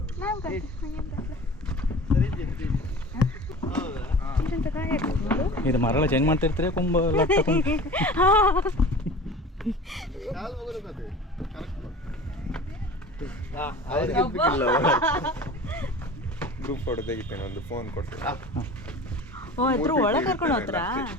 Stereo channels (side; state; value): both; normal; correlation 0.39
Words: ಇದು ಮರಳ ಚೇಂಜ್ ಮಾಡ್ತಿರ್ತೀರಿ ಕುಂಬ ಲಟ್ಟ ಕುಂಬ. ಗ್ರೂಪ್ ಫೋಟೋ ತೆಗಿತೇನೆ, ಒಂದು ಫೋನ್ ಕೊಡ್ತೇನೆ. ಒಳಗೆ ಕರ್ಕೊಂಡು ಹೋಗ್ತಾರಾ?